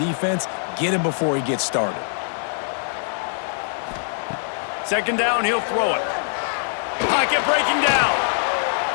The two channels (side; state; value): right; silent; 59 dB below the other